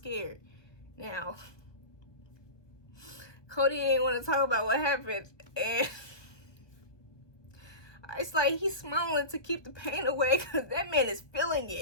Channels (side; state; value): right; late; 1.2 ms